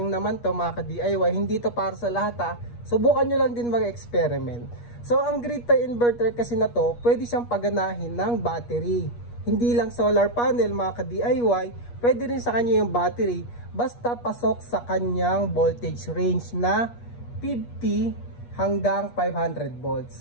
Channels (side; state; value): right; late; 8.4 ms